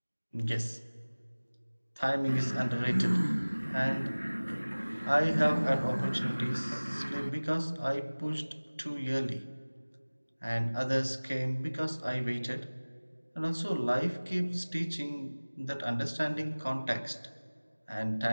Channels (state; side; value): inverted; both; correlation -1.00